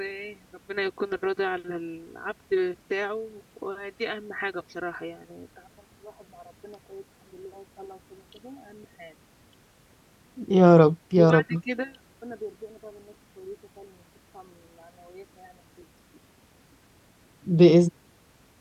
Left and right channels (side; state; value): both; identical; correlation 1.00